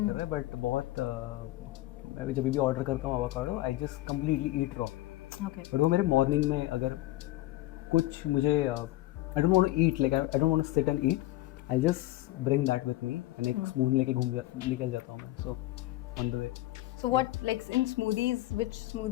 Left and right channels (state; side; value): quieter; right; 16.9 dB